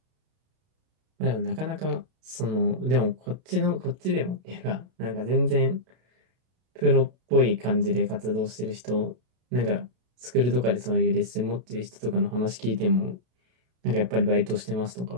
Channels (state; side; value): late; left; 32 ms